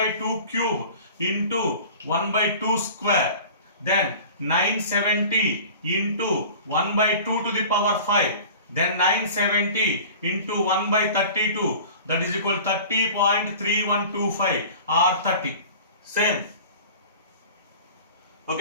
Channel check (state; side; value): inverted; both; correlation -0.41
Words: cube into 1/2 square. Then 970 into 1/2 to the power 5. Then 970 into 1/32, that is equal 30.3125 or 30. Same.